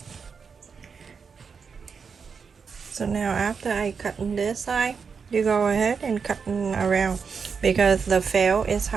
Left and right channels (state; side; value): quieter; left; 5.8 dB